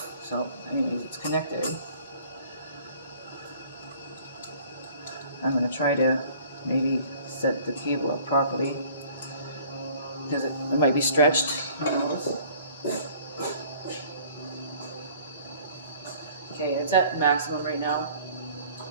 So anyways, it's connected. I'm going to try to maybe set the cable up properly, because it might be stretched. Who knows? Okay, it's at maximum right now.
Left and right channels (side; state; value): both; inverted; correlation -0.53